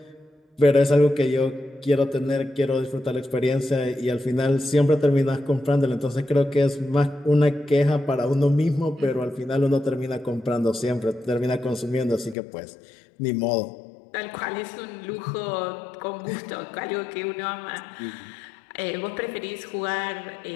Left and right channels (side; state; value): right; drops out; at 12.4 s